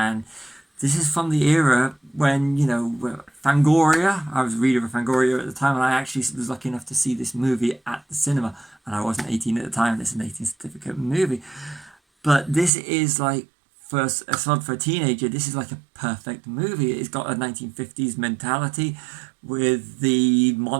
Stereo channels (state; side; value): drops out; left; at 12.7 s